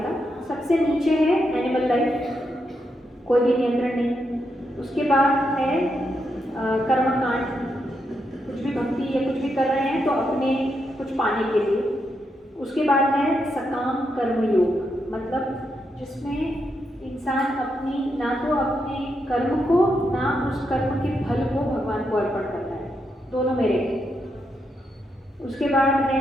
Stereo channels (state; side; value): normal; both; correlation 0.82